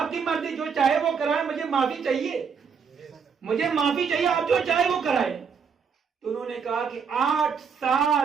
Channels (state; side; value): quieter; left; 6.2 dB